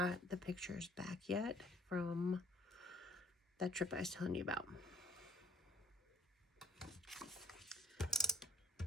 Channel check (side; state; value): both; normal; correlation 0.60